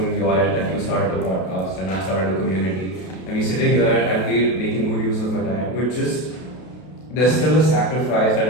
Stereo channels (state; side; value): late; right; 32 ms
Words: your end, like you started a podcast and I started a community, and we sitting here and we're making good use of our time, but just there's still a sacrifice